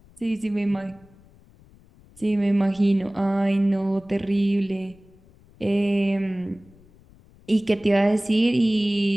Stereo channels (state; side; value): noise; left; rumble, 27 dB below the sound